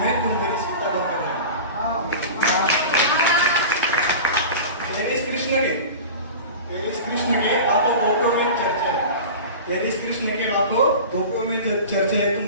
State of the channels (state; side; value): inverted; both; correlation -0.33